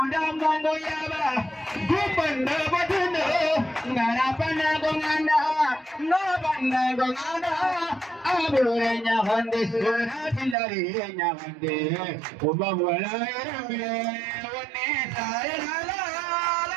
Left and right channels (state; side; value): drops out; left; at 10.6 s